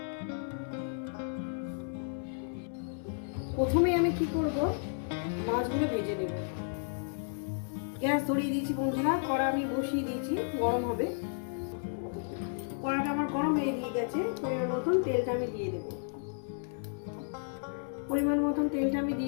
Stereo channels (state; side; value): silent; right; 56 dB below the other